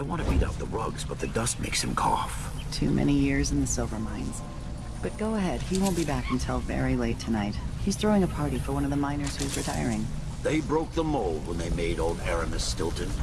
want to beat out the rugs, but the dust makes him cough. Too many years in the silver mines. But go ahead, he won't be back until very late tonight. He's throwing a party for one of the miners who's retiring. They broke the mold when they made old Aramis Stilton.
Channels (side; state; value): both; identical; correlation 1.00